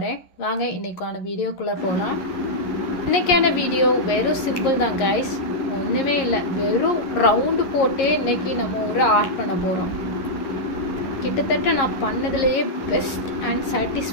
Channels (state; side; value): late; right; 11 ms